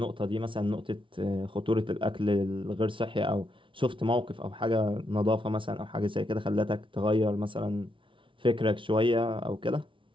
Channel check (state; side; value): late; left; 0.25 ms